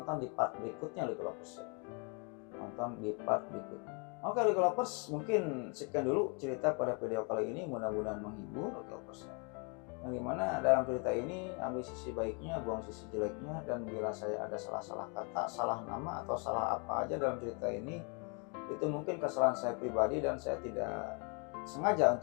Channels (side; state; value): right; quieter; 35.2 dB